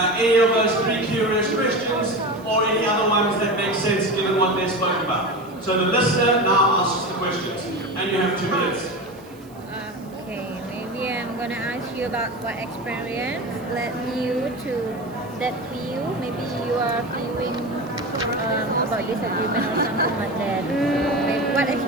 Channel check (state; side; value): noise; right; hiss, 27 dB below the sound